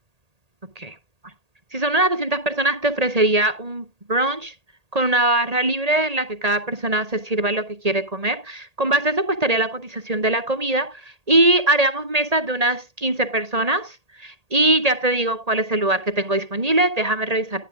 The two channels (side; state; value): left; late; 1.8 ms